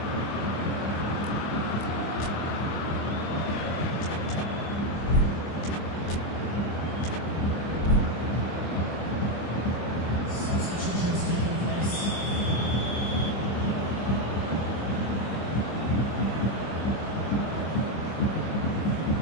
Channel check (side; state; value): right; late; 25 ms